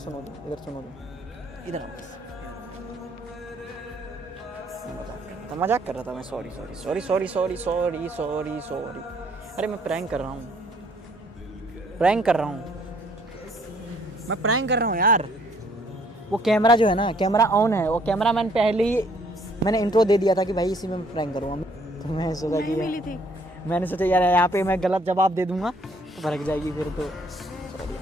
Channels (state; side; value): normal; both; correlation 0.63